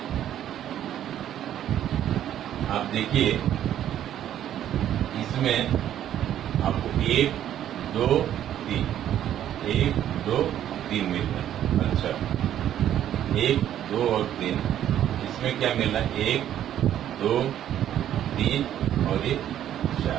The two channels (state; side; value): quieter; left; 11.1 dB